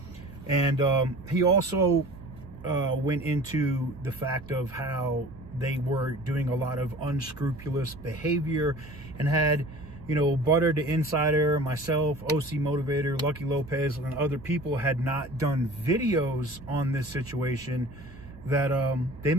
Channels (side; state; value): right; noise; hum, 19 dB below the sound